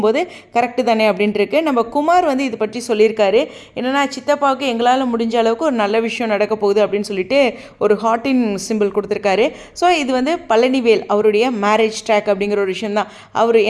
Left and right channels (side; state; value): both; identical; correlation 1.00